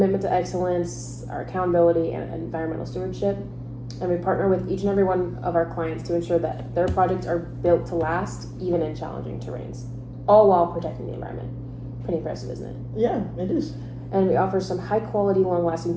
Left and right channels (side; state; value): both; identical; correlation 1.00